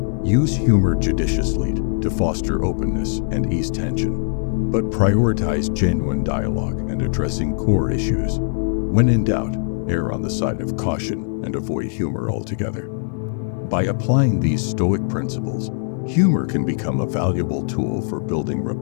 Use humor judiciously to foster openness and ease tension, but prioritize genuine dialogue and addressing core issues. When in doubt, err on the side of caution and avoid humor altogether. By applying these Stoic principles, humor can become a valuable tool for building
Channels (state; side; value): silent; right; 65 dB below the other